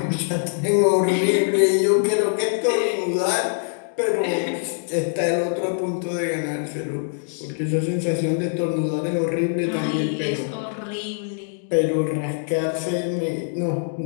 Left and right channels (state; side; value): silent; right; digital silence